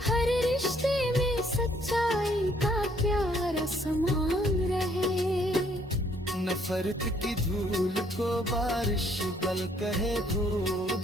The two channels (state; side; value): normal; both; correlation 0.66